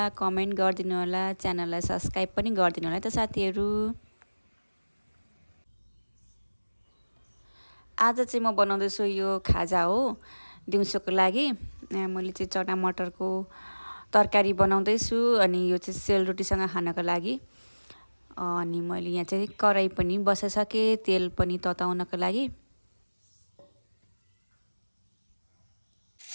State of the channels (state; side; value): inverted; both; correlation -1.00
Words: कमेन्ट गर्दिनु होला, च्यानललाई सब्स्क्राइब पनि गर्दिनु होला है त साथीहरु। आज चाहिँ म बनाउँदैछु यो खाजा हो दिउँसोको लागि। मैले चाहिँ चना मटरको तरकारी बनाउँदैछु अनि यो चाहिँ सेलरोटीसँग खानको लागि। अनि मैले यहाँ चाहिँ कराई पनि बसाइसके, तेल पनि तताउनको लागि।